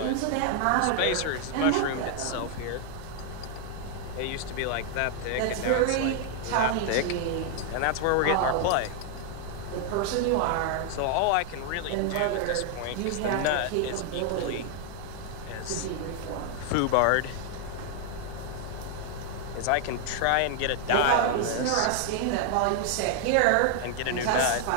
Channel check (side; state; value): both; different; correlation 0.00